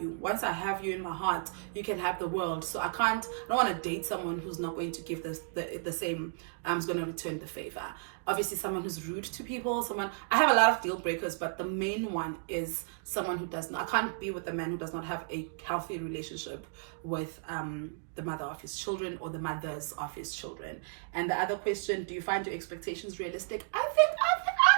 you, once I have you in my heart, you can have the world. So I don't want to date someone who's not going to give the same, who's going to return the favor. Obviously, someone who's rude to people, I have a lot of deal breakers, but the main one is someone who does not, I can't be with a man who does not have a healthy relationship with the mother of his children, or the mothers of his children. And the other question, do you find your expectations realistic? I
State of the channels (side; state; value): left; silent; digital silence